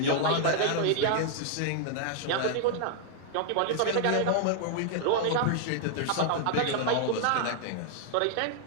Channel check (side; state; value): both; different; correlation -0.01